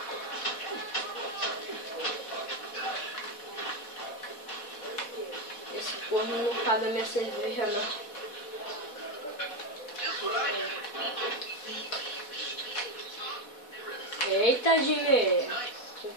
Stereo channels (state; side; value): late; right; 4.1 ms